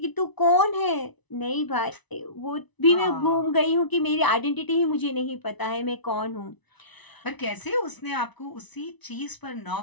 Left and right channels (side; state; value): right; late; 1.0 ms